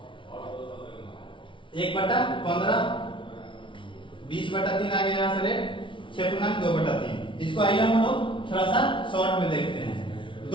1/15, 20/3 आ गया। यहाँ से रेट 6.2/3। इसको आइए हम लोग थोड़ा सा शॉर्ट में देखते हैं।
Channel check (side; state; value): right; late; 0.25 ms